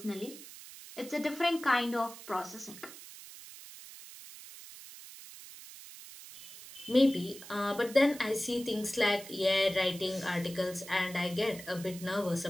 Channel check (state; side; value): noise; right; hiss, 15 dB below the sound